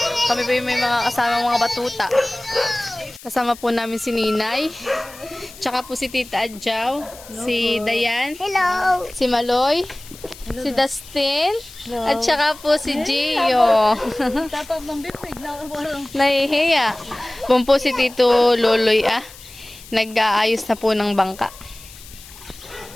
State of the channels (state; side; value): noise; left; hiss, 19 dB below the sound